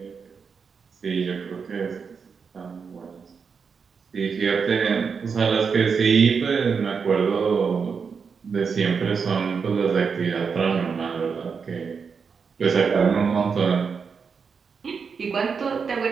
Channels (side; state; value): left; quieter; 5.8 dB